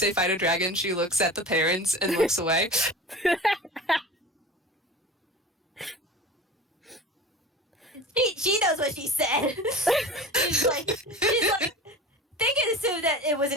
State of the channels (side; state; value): both; normal; correlation 0.35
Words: fight a dragon, she looks at the parents and looks away. She knows what she said. she's like, they can assume that it was